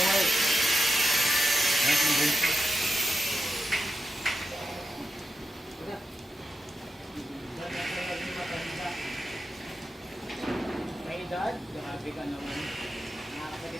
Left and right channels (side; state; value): both; normal; correlation 0.88